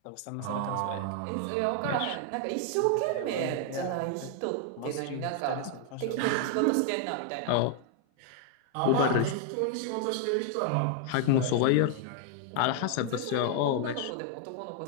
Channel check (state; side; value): different; both; correlation 0.00